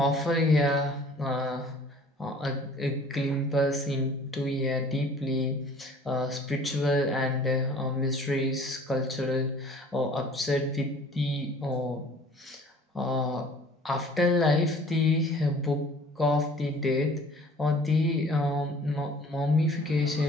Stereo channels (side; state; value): both; normal; correlation 0.50